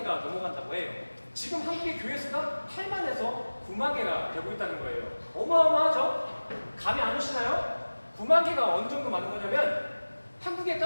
넘어간다고 해요. 지금 한국의 교회 수가 8만에서 9만 개가 되고 있다는 거예요. 어마어마하죠? 감이 안 오시나요? 9만 개가 어느 정도 많은 거냐면 한국에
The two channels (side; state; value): both; inverted; correlation -1.00